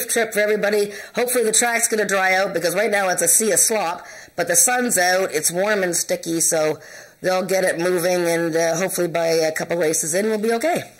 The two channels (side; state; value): both; identical; correlation 1.00